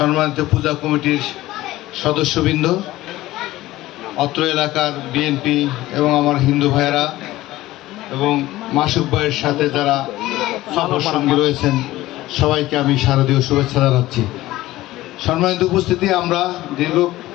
পূজা কমিটির সদস্যবৃন্দ, অত্র এলাকার বিএনপি এবং আমার হিন্দু ভাইয়েরা এবং মাসুক ভাইয়ের সাথে যারা সফর সঙ্গী রয়েছেন, সবাইকে আমি শারদীয় শুভেচ্ছা জানাচ্ছি। সম্মানিত উপস্থিতি, আমরা দীর্ঘ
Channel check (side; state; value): right; quieter; 16.7 dB